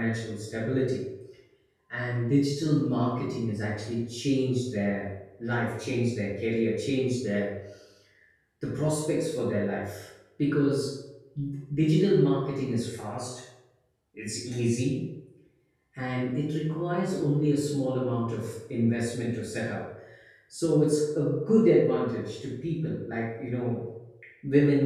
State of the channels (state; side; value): identical; both; correlation 1.00